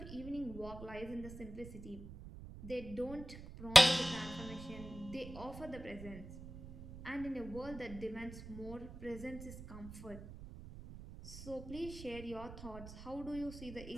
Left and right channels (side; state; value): right; noise; rumble, 12 dB below the sound